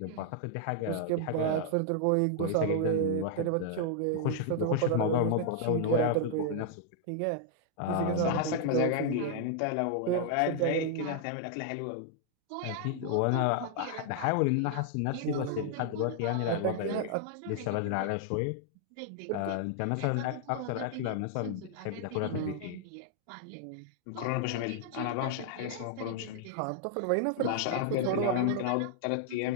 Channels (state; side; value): different; both; correlation 0.00